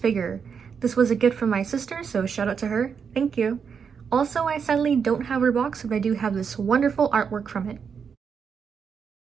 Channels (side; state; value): left; quieter; 6.5 dB